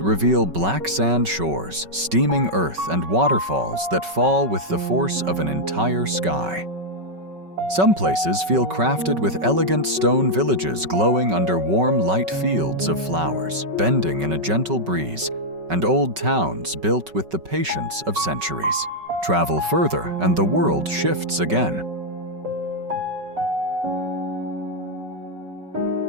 reveal black sand shores, steaming earth, and waterfalls that fall with the force of an entire sky. Some places feel crafted with elegant stone villages glowing under warm, light fields of flowers, bending in a gentle breeze, and old towns built with the patience of centuries. Travel further, and the world shifts again.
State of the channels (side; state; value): left; late; 5.3 ms